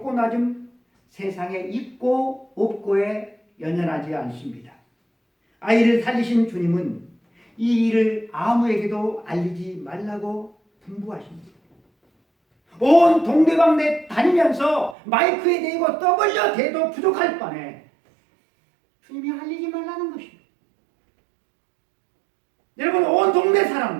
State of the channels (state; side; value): drops out; left; at 15.0 s